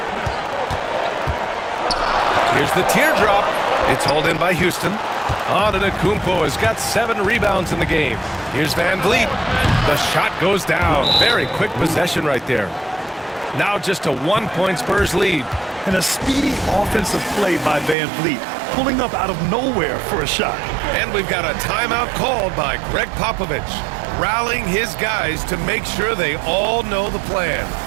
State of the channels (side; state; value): left; drops out; at 17.9 s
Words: Here's the teardrop. It's hauled in by Houston. Antetokounmpo has got 7 rebounds in the game. Here's Van Vliet. The shot goes down. Very quick possession right there. Now just a 1-point Spurs lead. And a speedy offensive play by Van Vliet, pulling up out of nowhere for a shot. And we've got a timeout called by Greg Popovich, rallying his guys to make sure they all know the plan.